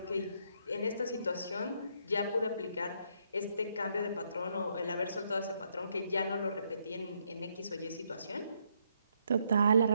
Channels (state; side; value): inverted; both; correlation -0.73